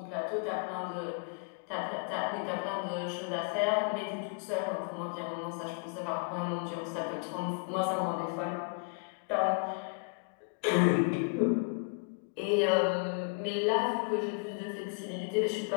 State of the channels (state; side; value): quieter; right; 36.9 dB